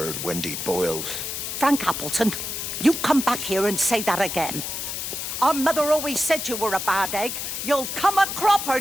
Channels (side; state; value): left; noise; hiss, 4 dB below the sound